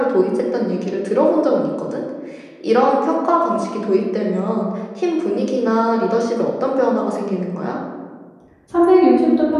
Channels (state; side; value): identical; both; correlation 1.00